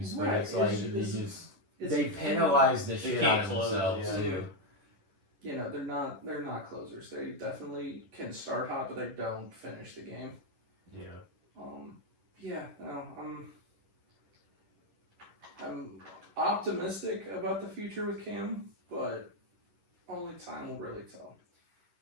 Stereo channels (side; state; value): left; late; 10 ms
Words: but Right, it's like it's- they penalize the They shit can't out of close, themselves yeah. too. you know, they're not closers. They definitely can start hot, but they don't finish the game. Yeah. Yeah, no, I'm optimistic about the future with Cam, but only time will really tell.